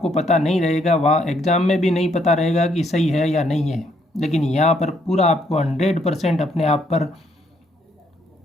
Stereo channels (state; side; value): normal; both; correlation 0.71